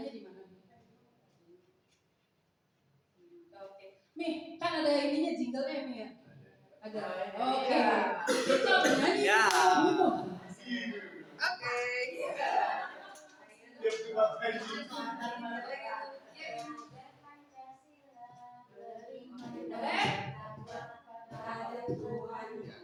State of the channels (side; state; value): both; identical; correlation 1.00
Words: di mana? Oke. Nih, kan ada ininya jingle-nya nih ya? Ada. Oke. Kita bernyanyi. Ya. Oke.